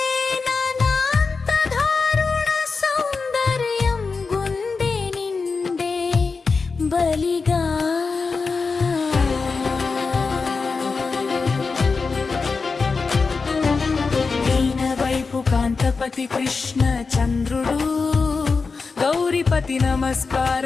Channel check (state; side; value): quieter; right; 4.6 dB